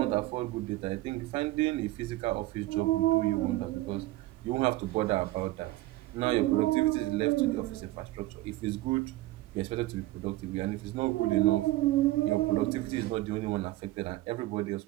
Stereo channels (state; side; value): quieter; left; 17.6 dB